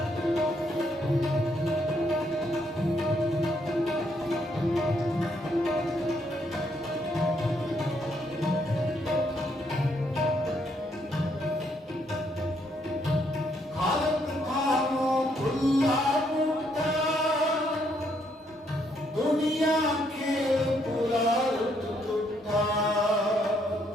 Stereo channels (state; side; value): normal; both; correlation 0.73